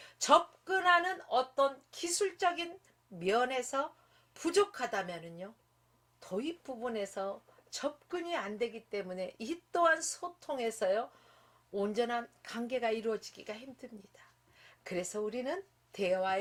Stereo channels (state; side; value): identical; both; correlation 1.00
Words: 접근하는 어떤 기술적인 면에서 부족하다면은요, 도입 부분에서 접근이 안 되기 때문에 이 또한 소통에서요, 온전한 관계가 이루어지기가 힘듭니다. 그래서 우리는